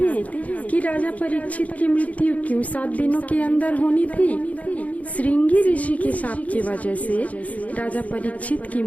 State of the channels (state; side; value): late; right; 0.070 ms